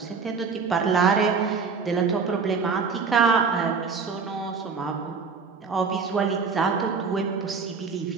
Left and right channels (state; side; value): quieter; left; 5.2 dB